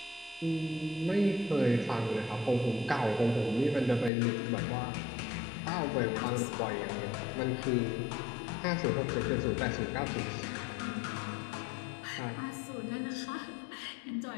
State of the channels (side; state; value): right; drops out; at 4.1 s